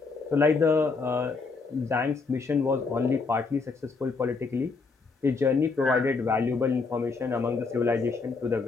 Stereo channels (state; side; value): quieter; right; 4.3 dB